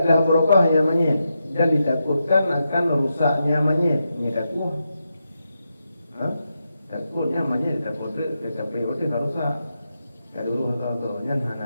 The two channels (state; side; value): inverted; both; correlation -0.86